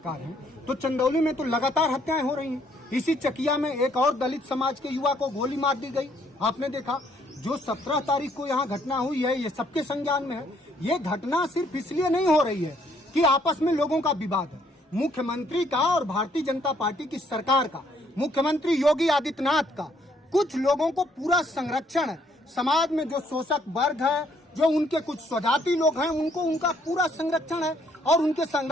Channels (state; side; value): normal; both; correlation 0.67